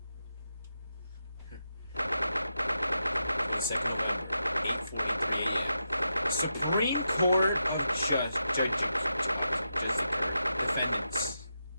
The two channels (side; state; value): both; inverted; correlation -0.87